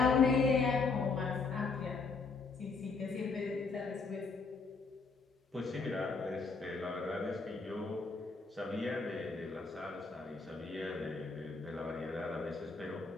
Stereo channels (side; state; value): right; quieter; 4.4 dB